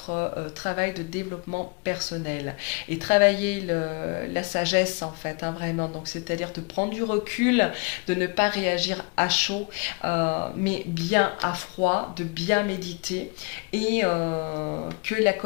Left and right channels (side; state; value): right; quieter; 31.0 dB